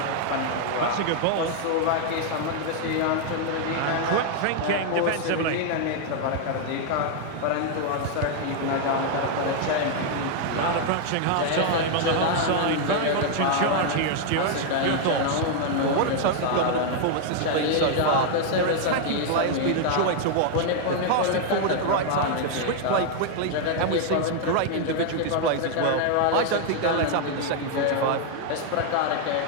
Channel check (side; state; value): both; different; correlation 0.00